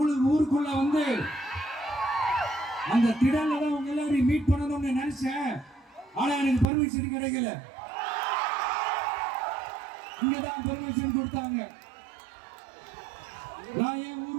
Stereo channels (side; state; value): left; drops out; at 6.7 s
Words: ஊருக்குள்ள வந்து அந்த திடல்ல தான் உங்க எல்லாரையும் மீட் பண்ணணும்னு நினைச்சேன். ஆனா எனக்கு பர்மிஷன் கிடைக்கல. இங்கதான் பர்மிஷன் கொடுத்தாங்க. நான் ஏன்